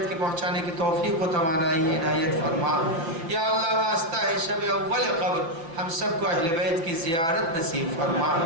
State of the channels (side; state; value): left; late; 5.9 ms